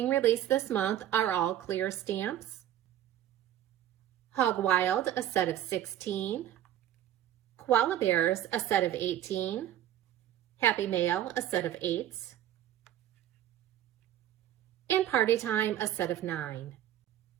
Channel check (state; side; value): quieter; left; 11.6 dB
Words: released this month are all clear stamps. Hog Wild, a set of 16. Koala Bears, a set of 18. Happy Mail, a set of 8. And Party Time, a set of 9.